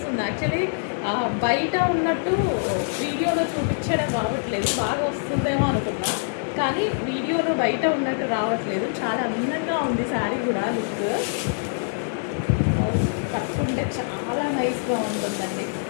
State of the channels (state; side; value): silent; right; digital silence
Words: యాక్చువల్లీ బయట ఉన్నట్టు వీడియోలో చూపించడం రావట్లేదు, బాగా వస్తుందేమో అనుకున్నా, కానీ వీడియోలో బయట ఉన్నట్టు రావట్లేదు. చాలా అందంగా ఉంది శారీ కూడా. లుక్ కట్టుకుంటే చాలా నైస్గా ఉంటుందండి.